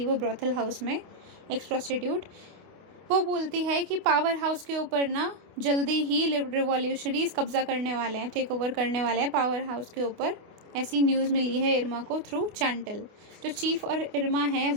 वो ब्रॉथल हाउस में एक्स प्रोस्टिट्यूट। वो बोलती है कि पावर हाउस के ऊपर ना जल्दी ही रिवॉल्यूशनरीज कब्जा करने वाले हैं, टेक ओवर करने वाले हैं पावर हाउस के ऊपर, ऐसी न्यूज़ मिली है इरमा को थ्रू चांटल। जो चीफ और इरमा हैं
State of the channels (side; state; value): left; late; 28 ms